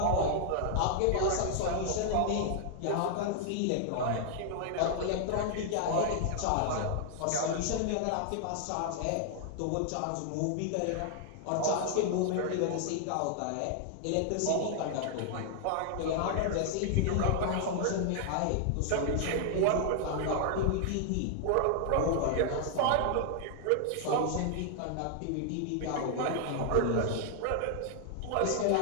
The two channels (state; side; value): different; both; correlation 0.00